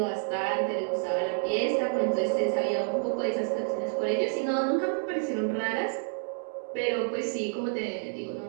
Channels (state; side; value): silent; left; digital silence